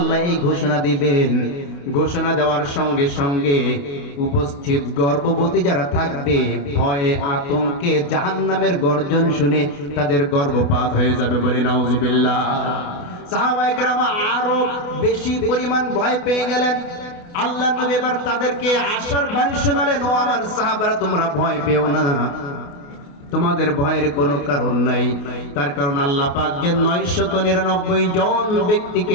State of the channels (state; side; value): late; right; 28 ms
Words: এই ঘোষণা দিবেন, ঘোষণা দেওয়ার সঙ্গে সঙ্গে উপস্থিত গর্ভবতী যারা থাকবে ভয়ে আতঙ্কে জাহান্নামের গর্জন শুনে তাদের গর্ভপাত হয়ে যাবে। বলি নাউজুবিল্লাহ। সাহাবায়ে কেরাম আরো বেশি পরিমাণ ভয় পেয়ে গেলেন। আল্লাহ নবী এবার তাদেরকে আশার বাণী শোনালেন, ও আমার সাহাবারা তোমরা ভয় পেও না, তোমাদের ভয়ের কোনো কারণ নাই। তার কারণ আল্লাহ পাক যে 999 জন ব্যক্তিকে